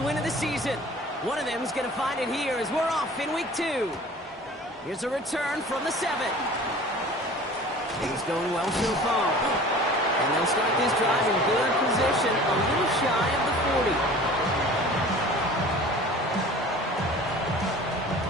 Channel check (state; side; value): normal; both; correlation 0.44